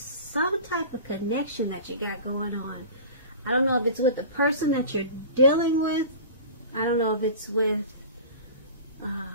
type of connection that you got going on. I don't know if it's with the person that you're dealing with. I don't know if it's with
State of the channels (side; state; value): both; inverted; correlation -0.36